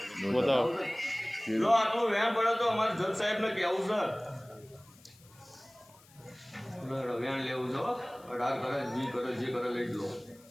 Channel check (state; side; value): noise; left; hiss, 27 dB below the sound